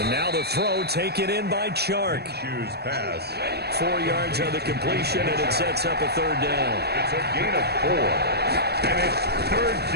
now the throw taken in by Chark. Shoes pass. 4 yards on the completion, and it sets up a 3rd down. It's a gain of 4. And it's 3rd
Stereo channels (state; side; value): late; left; 0.47 ms